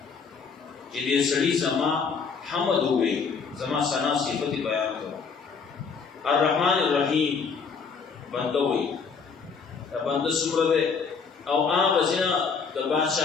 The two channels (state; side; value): quieter; right; 5.5 dB